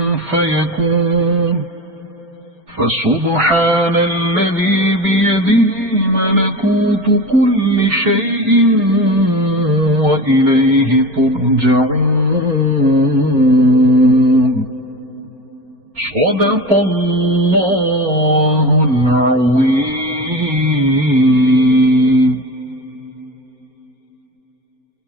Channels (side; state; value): left; late; 4.3 ms